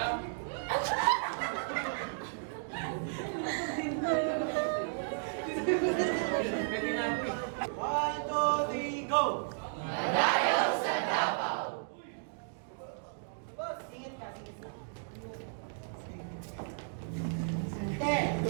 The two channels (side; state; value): left; silent; digital silence